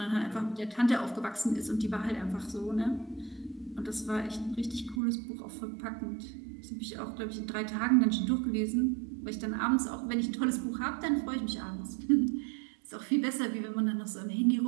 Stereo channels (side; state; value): left; drops out; at 5.0 s